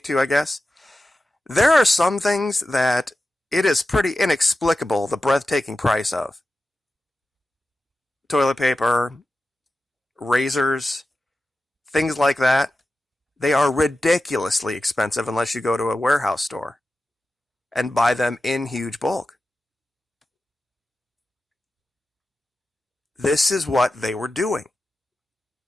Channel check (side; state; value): both; normal; correlation 0.93